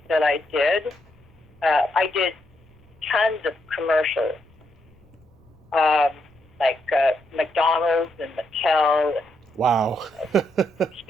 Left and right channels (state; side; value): noise; left; rumble, 29 dB below the sound